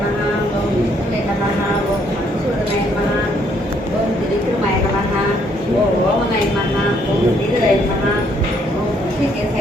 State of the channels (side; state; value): both; normal; correlation 0.68